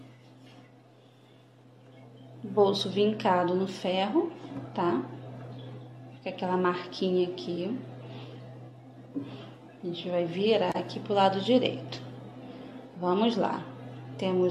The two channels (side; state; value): both; identical; correlation 1.00